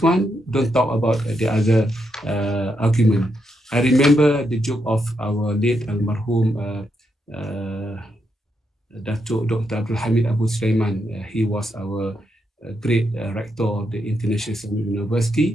one, don't talk about the other argument. I remember the joke of our late almarhum Dato Dr. Abdul Hamid Abu Sulaiman. He was our great rector of the International Islamic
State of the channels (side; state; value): both; normal; correlation 0.81